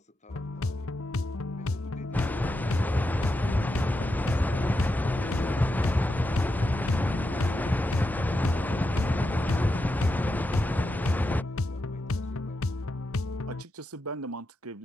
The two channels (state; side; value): normal; both; correlation 0.87